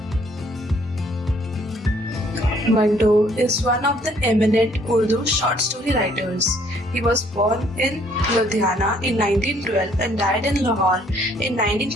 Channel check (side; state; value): both; normal; correlation 0.63